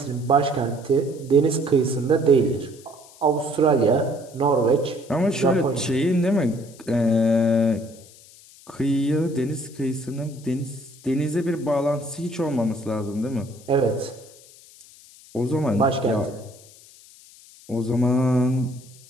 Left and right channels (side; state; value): left; noise; hiss, 23 dB below the sound